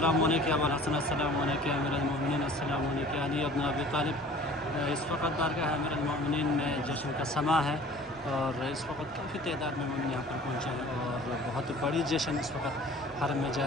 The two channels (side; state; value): both; normal; correlation 0.48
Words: عليك يا ابا الحسن، السلام عليك يا امير المؤمنین، السلام عليك يا علي ابن ابی طالب. इस वक्त बारगाह अमीर المؤمنین में जश्न का समा है और इस वक्त काफ़ी तादाद में मोमिन यहाँ पर पहुँचे हैं और बहुत बड़ी जश्न इस वक्त हरम में